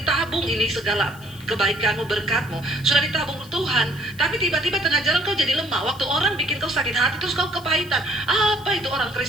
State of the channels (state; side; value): noise; left; hiss, 22 dB below the sound